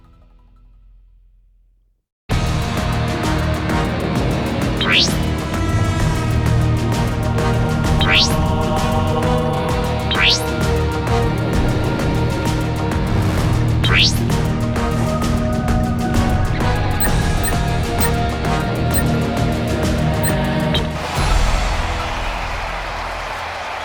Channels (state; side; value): identical; both; correlation 1.00